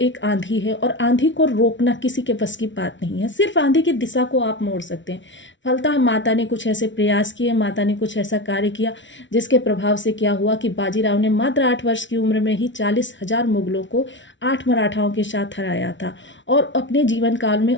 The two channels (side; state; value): right; late; 0.55 ms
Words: आंधी है और आंधी को रोकना किसी के बस की बात नहीं है, सिर्फ आंधी की दिशा को आप मोड़ सकते हैं। फलतः माता ने कुछ ऐसे प्रयास किए, माता ने कुछ ऐसा कार्य किया जिसके प्रभाव से क्या हुआ कि बाजीराव ने मात्र 8 वर्ष की उम्र में ही 40,000 मुगलों को 8 मराठाओं के साथ हराया था। और अपने जीवन काल में